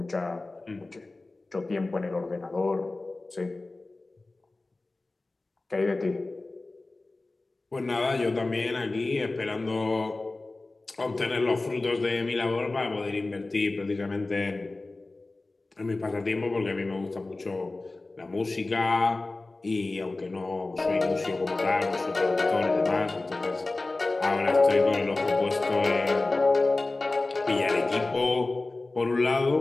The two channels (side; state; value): right; quieter; 3.2 dB